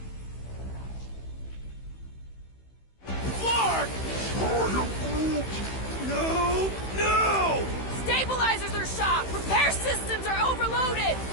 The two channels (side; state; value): right; late; 16 ms